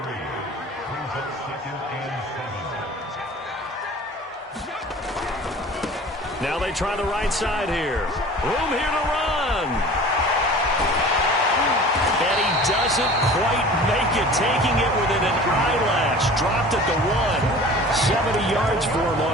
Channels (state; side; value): normal; both; correlation 0.42